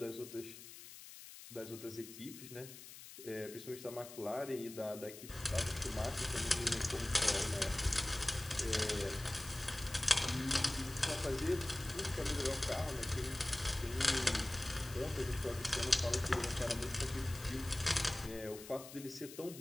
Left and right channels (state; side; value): noise; left; hiss, 14 dB below the sound